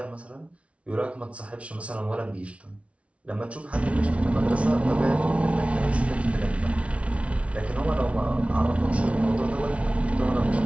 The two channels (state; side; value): late; left; 0.062 ms